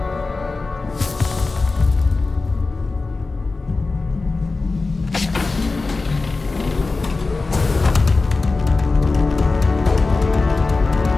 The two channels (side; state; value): right; quieter; 3.7 dB